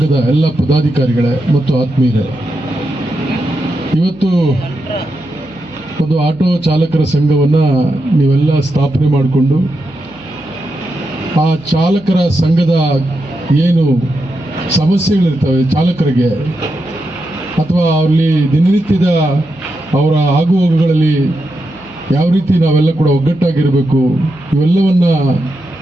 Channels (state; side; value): noise; right; hum, 27 dB below the sound